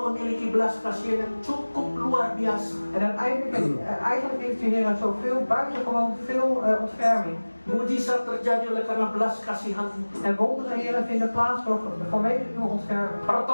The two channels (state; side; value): inverted; both; correlation -1.00